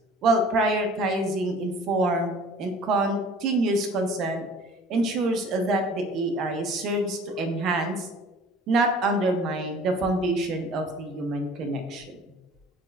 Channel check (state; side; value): normal; both; correlation 0.48